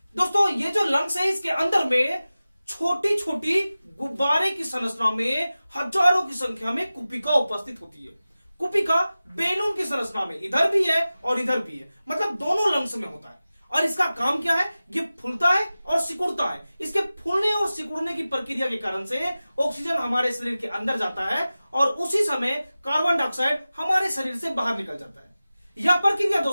दोस्तों ये जो लंग्स है, इसके अंदर में छोटी छोटी गुब्बारे की संरचना में हजारों की संख्या में कुपिका उपस्थित होती है। कुपिका बैलून की संरचना में इधर भी है और इधर भी है, मतलब दोनों लंग्स में होता है। और इसका काम क्या है? ये फूलता है और सिकुड़ता है। इसके फूलने और सिकुड़ने की प्रक्रिया के कारण से ऑक्सीजन हमारे शरीर के अंदर जाता है और उसी समय कार्बन डाइऑक्साइड हमारे शरीर से बाहर निकल जाता है। यह प्रक्रिया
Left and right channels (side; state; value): both; inverted; correlation -0.96